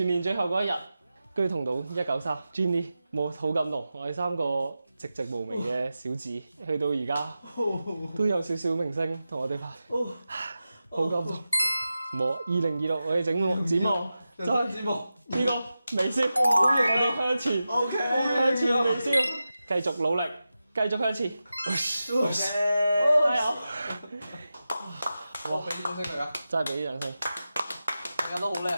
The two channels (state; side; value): inverted; both; correlation -0.93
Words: 年最後嗰一日，居同到193 Jenny， 好感動。我哋3個寂寂無名嘅小子，去到而家都有少少明星同我哋拍，好感動。2026我哋展望就係呢個微笑，我哋向前，向前微笑，繼續努力，繼續向前，加油！我俾啲掌聲佢啊！真係俾啲掌聲，大家都好叻。